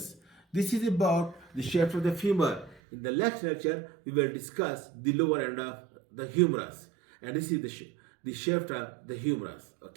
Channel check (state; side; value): drops out; left; at 2.8 s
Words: This is about the shaft of the femur. In the next lecture, we will discuss the lower end of the humerus, and this is the shaft of the humerus.